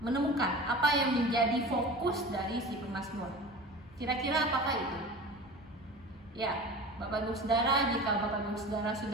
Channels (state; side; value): normal; both; correlation 0.35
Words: menemukan apa yang menjadi fokus dari si pemazmur. Kira-kira apakah itu? Ya, Bapak Ibu Saudara, jika Bapak Ibu Saudara